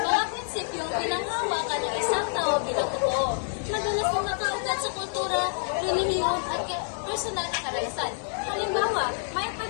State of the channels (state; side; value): silent; right; 60 dB below the other